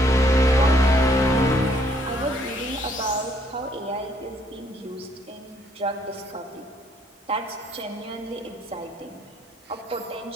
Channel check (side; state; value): both; normal; correlation 0.67